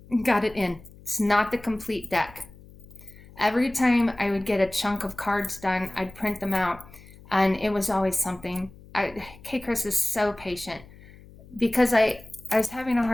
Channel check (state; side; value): noise; left; hum, 21 dB below the sound